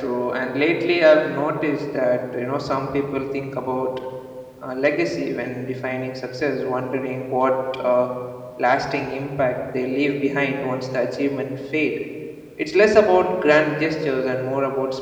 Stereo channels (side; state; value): both; identical; correlation 1.00